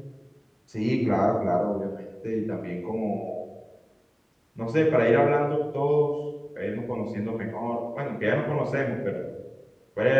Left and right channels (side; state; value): both; identical; correlation 1.00